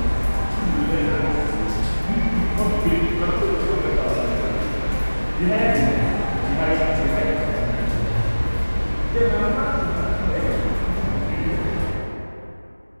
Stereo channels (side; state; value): both; inverted; correlation -1.00